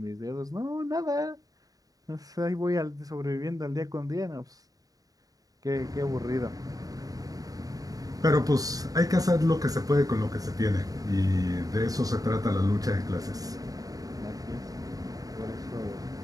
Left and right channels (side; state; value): left; late; 0.18 ms